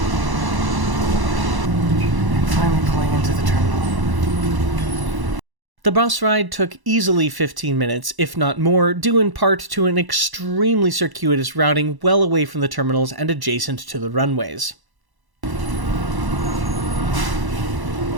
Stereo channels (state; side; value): late; left; 1.0 ms